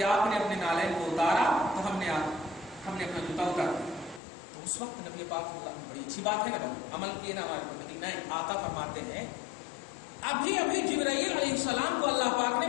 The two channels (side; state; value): right; drops out; at 4.2 s